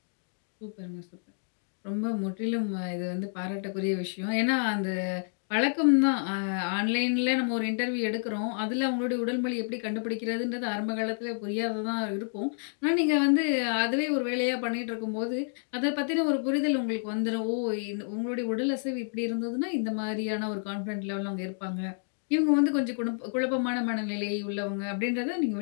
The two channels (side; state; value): right; silent; digital silence